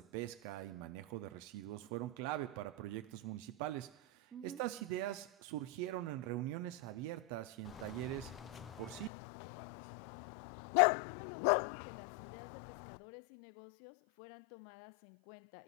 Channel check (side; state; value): right; drops out; at 9.1 s